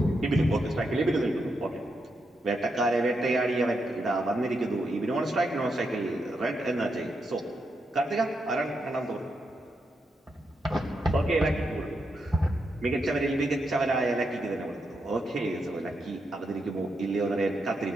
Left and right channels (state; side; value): normal; both; correlation 0.83